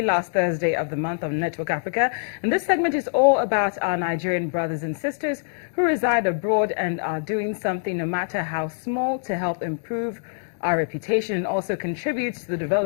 last Thursday of the month on Network Africa. And this segment is all about our Nigerian brothers and sisters who reside abroad and are doing something, no matter how small, to help improve our reputation and also contributes to the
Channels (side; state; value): right; silent; digital silence